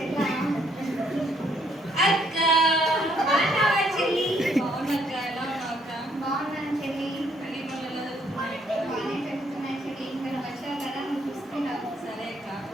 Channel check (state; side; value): normal; both; correlation 0.69